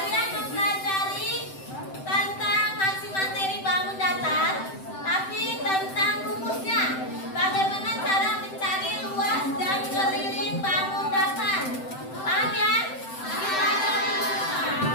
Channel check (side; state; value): right; late; 7.8 ms